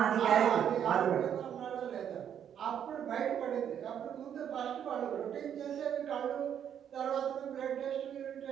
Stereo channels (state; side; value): quieter; left; 9.1 dB